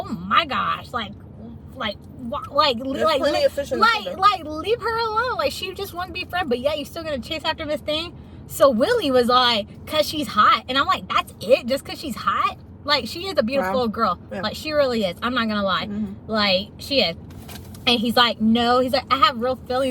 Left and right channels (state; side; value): identical; both; correlation 1.00